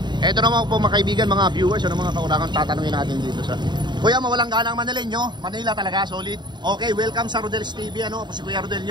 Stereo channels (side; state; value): left; late; 0.22 ms